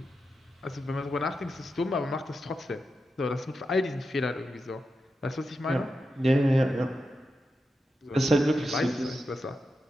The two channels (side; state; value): both; normal; correlation 0.88